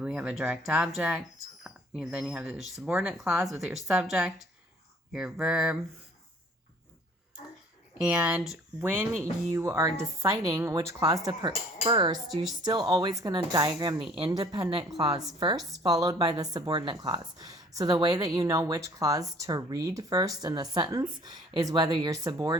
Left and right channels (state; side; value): normal; both; correlation 0.54